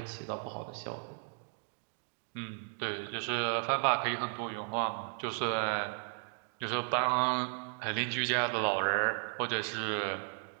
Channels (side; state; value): left; silent; 55 dB below the other